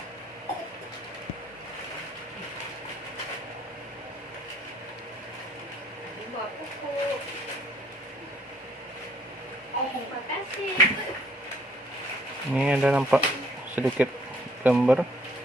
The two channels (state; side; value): normal; both; correlation 0.63